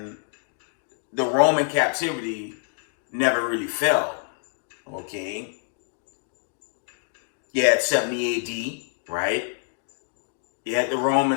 the Roman captivity never really fell, okay? You had 70 AD, right? You had the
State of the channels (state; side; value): silent; right; digital silence